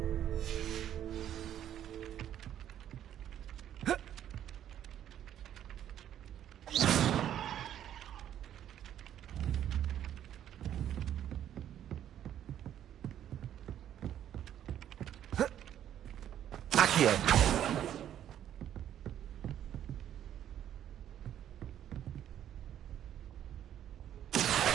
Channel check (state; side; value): quieter; left; 10.7 dB